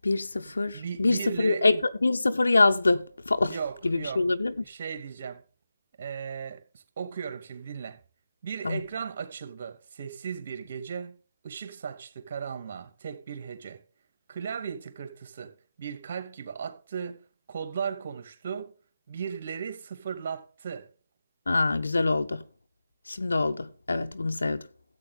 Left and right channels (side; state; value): both; inverted; correlation -0.92